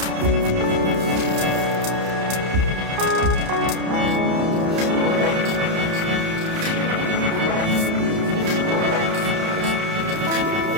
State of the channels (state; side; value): late; left; 31 ms